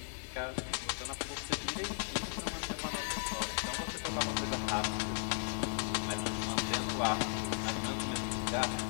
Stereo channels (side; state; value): right; silent; 54 dB below the other